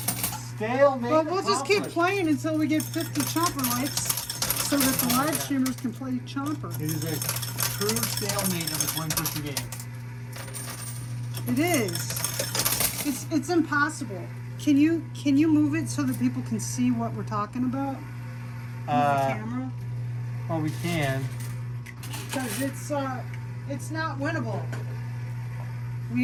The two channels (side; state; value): both; identical; correlation 1.00